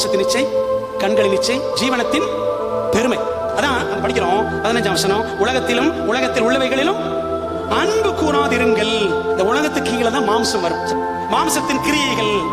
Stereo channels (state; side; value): identical; both; correlation 1.00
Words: இச்சை, கண்களின் இச்சை, ஜீவனத்தின் பெருமை. அதான் படிக்கிறோம் 15ஆம் வசனம், உலகத்திலும் உலகத்தில் உள்ளவைகளிலும் அன்பு கூறாதிருங்கள். இந்த உலகத்துக்கு கீழே தான் மாம்சம் வரும். மாம்சத்தின் கிரியைகள்